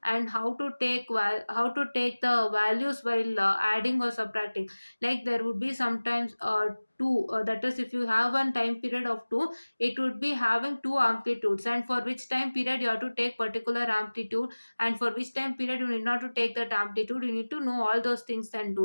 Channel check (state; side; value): inverted; both; correlation -1.00